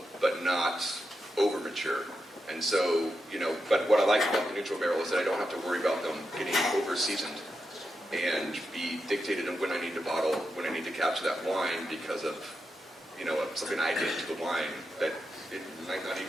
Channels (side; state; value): both; normal; correlation 0.87